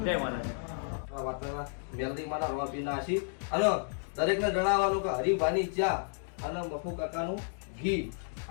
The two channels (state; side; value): silent; right; 56 dB below the other